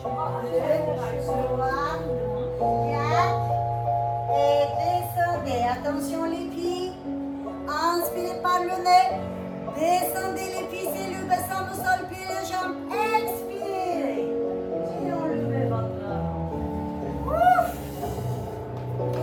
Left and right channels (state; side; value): identical; both; correlation 1.00